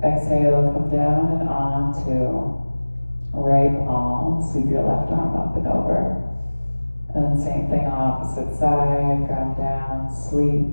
Exhale, come down and onto right palm. Sweep your left arm up and over. And same thing, opposite side. Ground down,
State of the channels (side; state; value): both; inverted; correlation -1.00